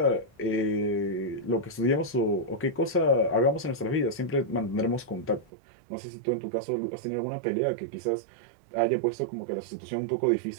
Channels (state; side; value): drops out; left; at 5.5 s